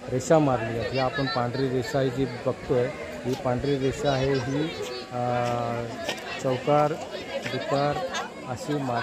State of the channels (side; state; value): both; identical; correlation 1.00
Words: रेषा मारली आहेत. ही आपण पांढरी रेषा जी बघतोय, ही पांढरी रेषा आहे, ही चौकार डुकार अशी